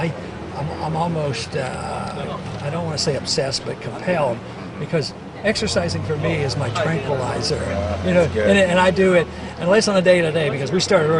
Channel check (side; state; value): both; identical; correlation 1.00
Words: almost, I don't want to say obsessed, but compelled, because exercising for me is my tranquilizer. You know, and I do it, unless on a day-to-day, because we started